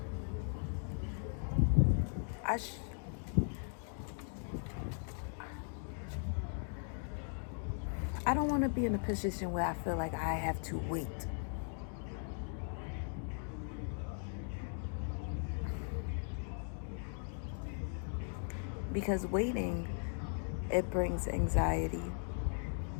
I don't want to be in a position where I feel like I have to wait. Because waiting, it brings anxiety.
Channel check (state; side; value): silent; right; 52 dB below the other